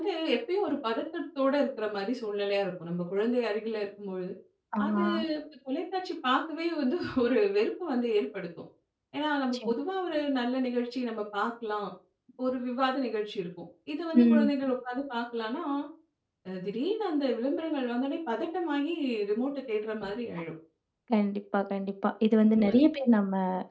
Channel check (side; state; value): both; identical; correlation 1.00